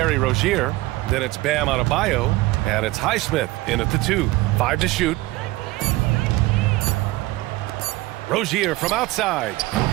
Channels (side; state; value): left; quieter; 19.6 dB